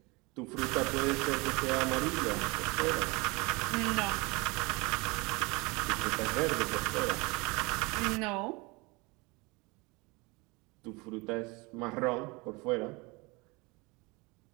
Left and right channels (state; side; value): quieter; left; 26.3 dB